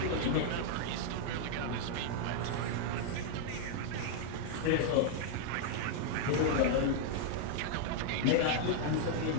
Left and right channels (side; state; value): both; different; correlation 0.00